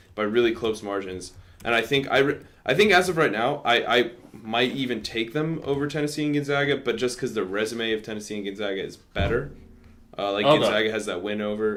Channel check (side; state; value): both; identical; correlation 1.00